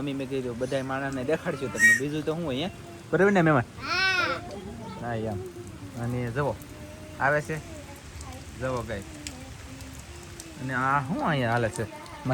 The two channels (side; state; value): both; identical; correlation 1.00